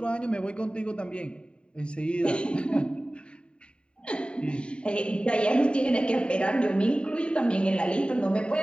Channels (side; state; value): right; late; 0.052 ms